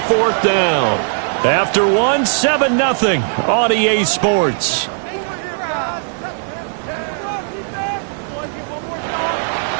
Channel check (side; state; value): left; silent; digital silence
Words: 4th down. After 7-0 on EA Sports.